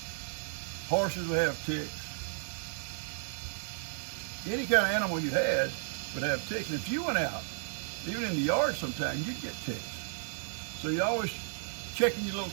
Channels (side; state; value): left; silent; digital silence